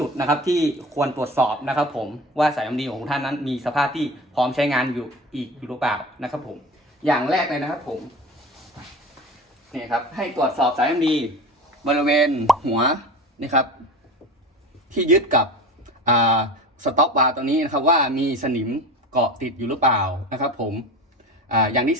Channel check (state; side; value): normal; both; correlation 0.33